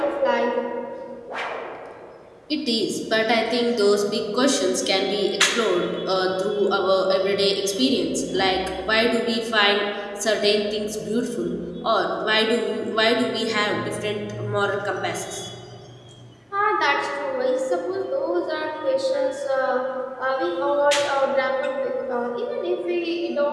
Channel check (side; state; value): both; identical; correlation 1.00